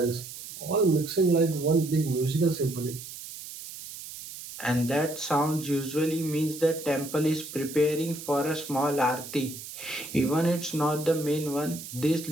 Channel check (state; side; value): noise; right; hiss, 12 dB below the sound